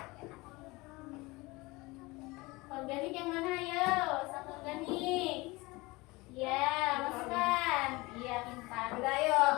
Organik yang mana ayo? Satu organik. Iya, masukkan. Iya, pintar. Udah yuk,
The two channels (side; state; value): right; quieter; 22.9 dB